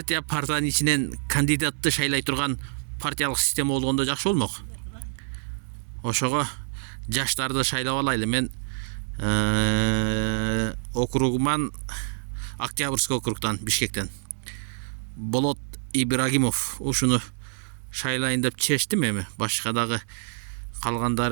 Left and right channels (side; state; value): left; silent; digital silence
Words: ичинен кандидатты шайлай турган партиялык система болгондо жакшы болмок. Ошого жаштарды шайлап алайлы. Мен округуман, Октябрьский округтан, Бишкектен Болот Ибрагимов ушуну шайлайын деп чечтим. Эми башка дагы